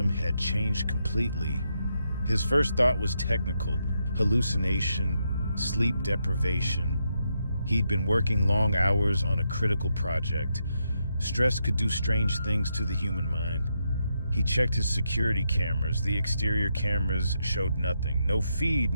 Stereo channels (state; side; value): inverted; both; correlation -0.82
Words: had changed completely. His first thought was technical, hallucination, sleep deprivation. He'd been working long hours on a critical project. Stress could do strange things to the human mind. He checked his security cameras. The exterior cameras showed nothing. No feed,